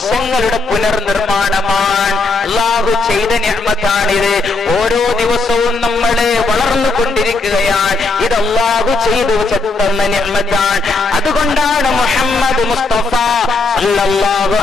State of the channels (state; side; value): quieter; right; 3.6 dB